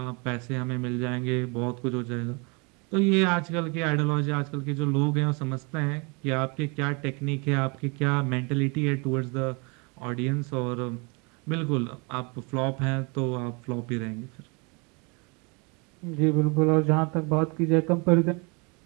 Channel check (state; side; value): quieter; left; 30.9 dB